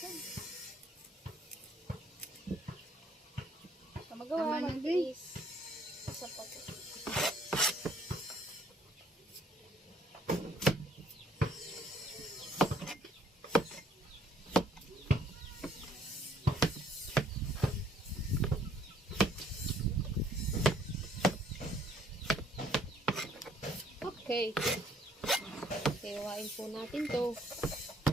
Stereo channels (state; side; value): normal; both; correlation 0.63